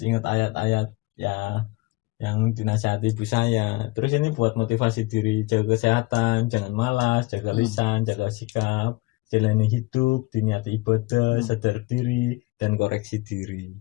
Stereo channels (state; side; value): quieter; right; 22.0 dB